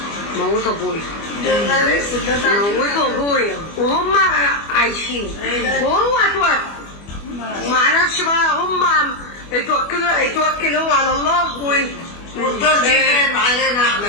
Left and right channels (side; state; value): right; late; 25 ms